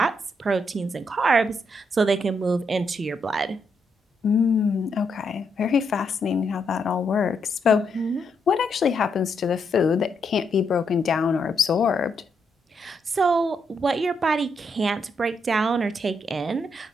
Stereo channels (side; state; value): both; normal; correlation 0.79